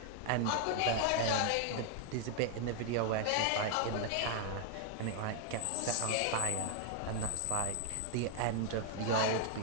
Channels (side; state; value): both; different; correlation 0.00